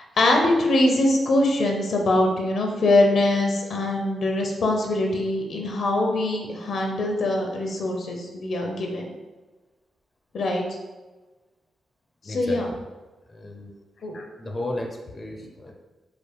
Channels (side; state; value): both; normal; correlation 0.82